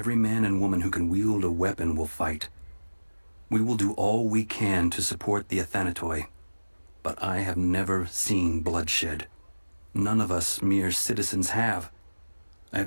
man and woman who can wield a weapon will fight. We will do all we can to support the Athanatoi, but I have never seen bloodshed. None of us mere citizens have. I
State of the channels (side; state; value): both; inverted; correlation -1.00